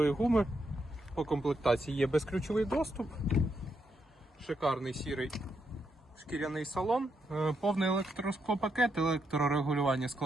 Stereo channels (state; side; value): normal; both; correlation 0.80